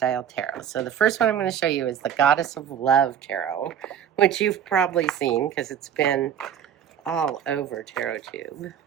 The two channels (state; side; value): quieter; left; 8.9 dB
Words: tarot. So the first one I'm going to show you is the Goddess of Love Tarot, which you've probably seen because it's been all over TarotTube.